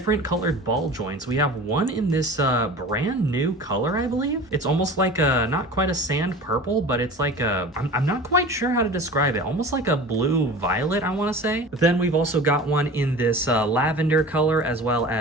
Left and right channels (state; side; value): normal; both; correlation 0.37